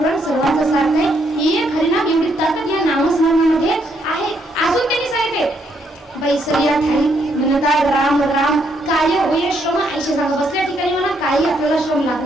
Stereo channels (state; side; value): normal; both; correlation 0.74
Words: सर्वांचं सार आहे. एक हरिनाम एवढी ताकद या नामस्मरणामध्ये आहे. अजून त्यांनी सांगितले बैसरिया थाळी म्हणतात राम राम काय होय श्रम. आयशे सांगा बसल्या ठिकाणी म्हणा काही आपल्याला श्रम